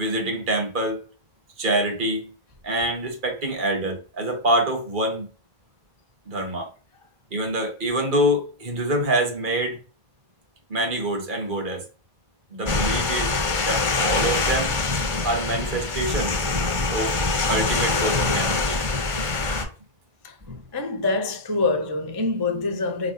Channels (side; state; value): left; late; 1.5 ms